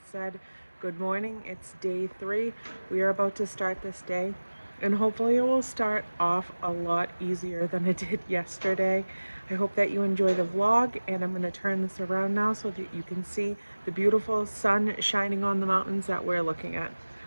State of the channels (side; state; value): both; inverted; correlation -1.00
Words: said. Good morning, it's day 3. We are about to start this day and hopefully it will start off a lot easier than it did yesterday. I hope that you enjoy the vlog, and I'm gonna turn this around now so that you can see the beautiful sun shining on the mountains that we're looking at.